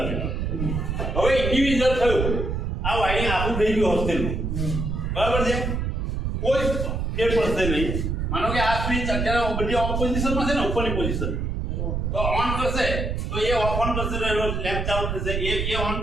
હવે ઇન્ડિવિડ્યુઅલ થયું આ વાયરિંગ આખું થઈ ગયું હોસ્ટેલનું, બરાબર છે? કોઈ ફેર પડશે નહીં. માનો કે આ સ્વિચ અત્યારે બધી ઓફ પોઝિશનમાં છે ને, ઉપરની પોઝિશન, તો ઓન કરશે તો એ ઓન કરશે તો એનો લેમ્પ ચાલુ થશે, એ ઓન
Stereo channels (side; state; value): right; noise; rumble, 1 dB below the sound